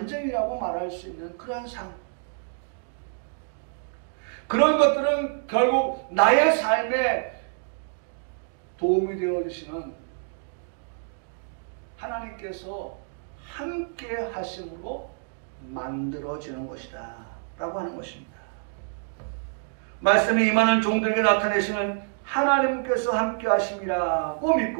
말할 수 있는 그런 삶. 그런 것들은 결국 나의 삶에 도움이 되어주시는 하나님께서 함께 하심으로 만들어지는 것이다 라고 하는 것입니다. 말씀이 임하는 종들에게 나타내시는 하나님께서 함께 하심이라고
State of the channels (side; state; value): left; silent; digital silence